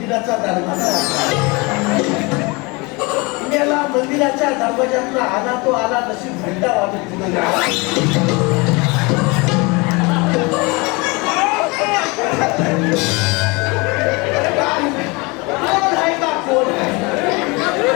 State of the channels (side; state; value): right; quieter; 26.9 dB